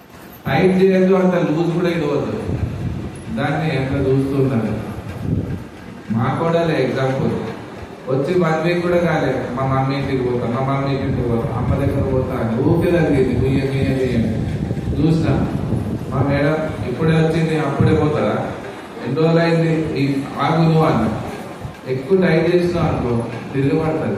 టైట్ చేయదు, అంత లూజ్ కూడా ఇవ్వద్దు. దాన్ని ఎంత చూస్తున్నారు. మా కోడలే ఎగ్జాంపుల్, వచ్చి 1 వీక్ కూడా కాలే, మా మమ్మీ ఇంటికి పోతాను, మా మమ్మీ ఇంటికి పోతాను, అమ్మ దగ్గర పోతాను, ఊపిరి తగ్గింది. బియ్యం చూసినా మా మేడం ఇప్పుడే వచ్చింది, అప్పుడే పోతారా, ఎన్ని రోజులు అయింది, ఆగు నువ్వు అన్న. ఎక్కువ టైట్ చేసినావు అనుకో తిరగబడుతుంది.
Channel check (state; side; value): identical; both; correlation 1.00